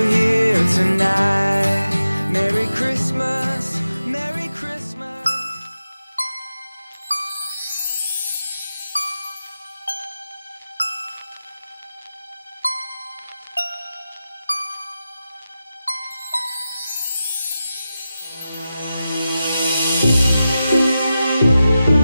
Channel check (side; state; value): both; inverted; correlation -0.92